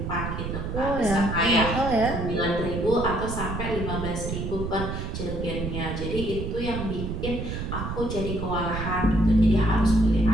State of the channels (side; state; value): right; noise; rumble, 4 dB below the sound